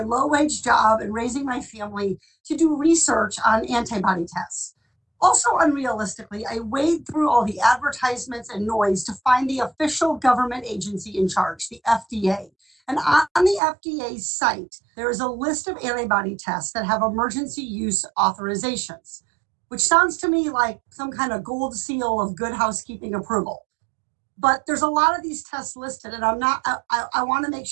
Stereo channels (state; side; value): drops out; left; at 13.6 s